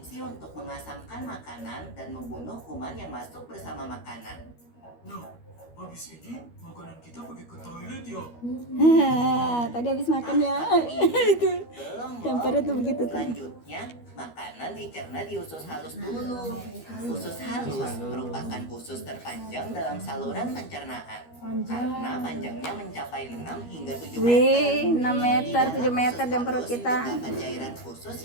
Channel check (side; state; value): right; late; 13 ms